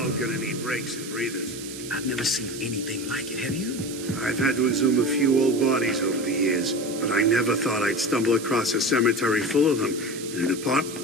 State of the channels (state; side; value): noise; right; hiss, 12 dB below the sound